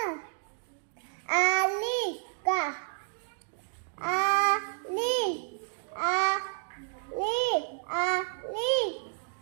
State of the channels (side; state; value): left; silent; digital silence